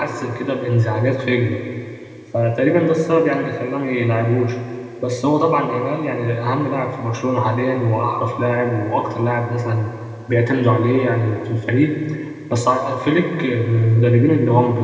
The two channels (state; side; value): identical; both; correlation 1.00